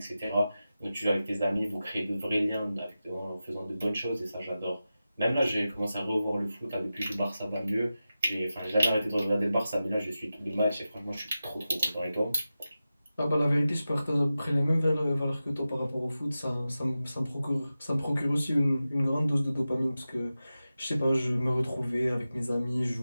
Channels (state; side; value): inverted; both; correlation -0.93